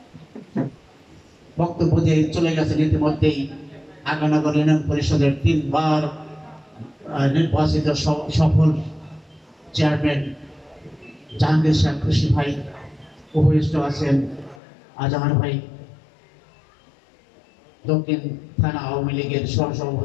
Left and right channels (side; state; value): right; drops out; at 14.6 s